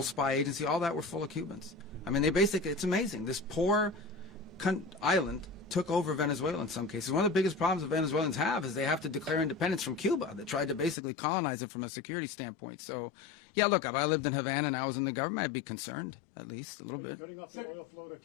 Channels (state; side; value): drops out; right; at 11.0 s